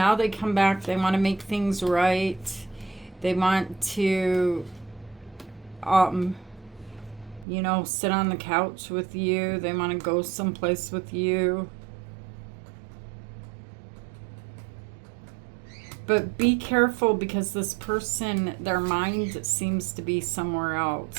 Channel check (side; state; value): left; drops out; at 7.5 s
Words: they come back. They want to make things right. They want to, you know, sit on the couch with you. They want to go someplace with you. But be careful, because this person, their mind seems to be somewhere